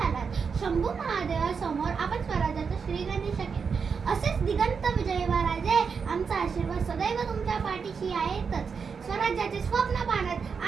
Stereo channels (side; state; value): left; quieter; 5.8 dB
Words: शंभू महादेवासमोर आपण स्वराज्याचं श्रीगणेश केलं. असेच दिगंत विजयी व्हा राजे. आमचा आशीर्वाद सदैव तुमच्या पाठीशी आहेतच. स्वराज्याचे स्वप्न पाहण्यात